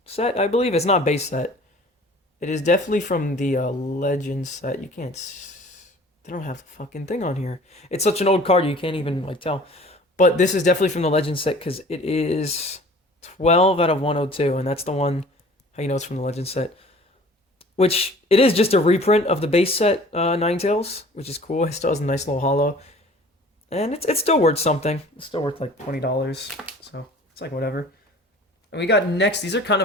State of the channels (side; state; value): both; normal; correlation 0.48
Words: set, I believe. It's not base set. It is definitely from the Legends set. You can't... They don't have the fucking thing on here. It's such an old card, you can't even like tell. But this is definitely from the Legends set because it is 12 out of 102, and that's the one, how you know it's from the Legends set. Which, it is just a reprint of the base set Ninetales, which is cool. It still has a nice little holo. And it's still worth something. It's still worth like $20, so it's like whatever. And we got next, these are kind